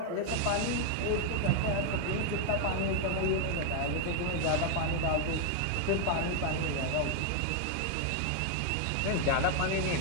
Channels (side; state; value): both; different; correlation 0.00